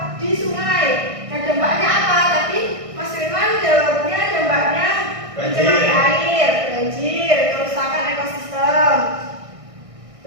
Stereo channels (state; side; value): late; left; 1.6 ms